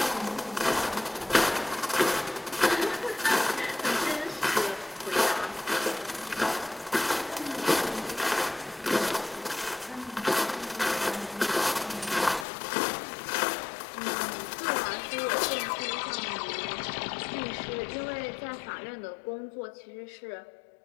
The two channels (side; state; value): right; drops out; at 12.5 s